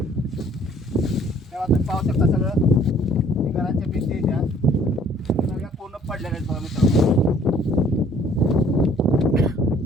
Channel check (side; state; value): both; normal; correlation 0.58